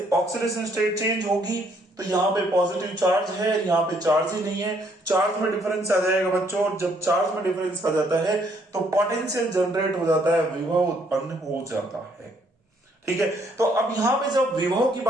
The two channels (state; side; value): normal; both; correlation 0.68